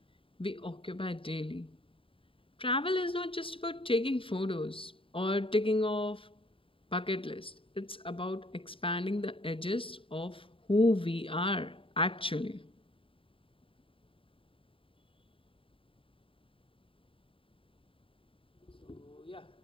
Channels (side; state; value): right; late; 0.26 ms